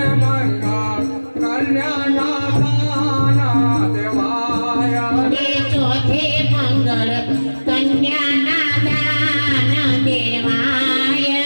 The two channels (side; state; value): both; inverted; correlation -1.00